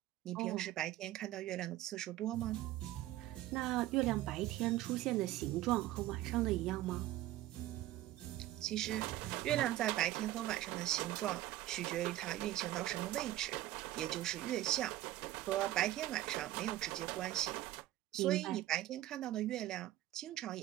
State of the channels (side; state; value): left; quieter; 14.9 dB